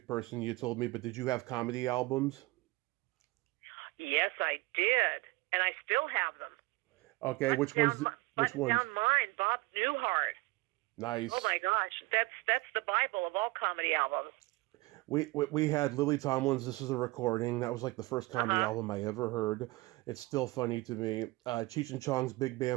person, you told me, but did you have comedy albums? Yes, I did, and I still have them. Okay, which ones? Which ones? Down mine, Bob Newhart. Nice. Oh my gosh, that's the Bible of all comedy albums. We had Lily Tomlin's "This Is a Recording." That was like the first comedy album I ever heard. It's still funny to me. Cheech and Chong's "Big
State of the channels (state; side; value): quieter; left; 22.4 dB